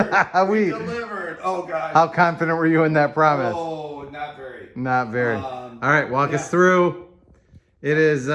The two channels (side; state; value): both; identical; correlation 1.00